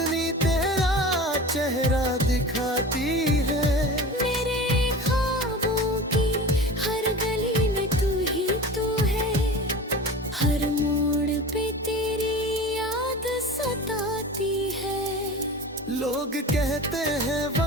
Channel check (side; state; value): both; normal; correlation 0.35